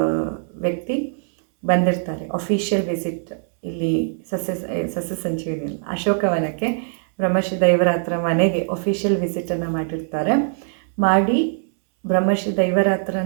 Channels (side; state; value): left; silent; digital silence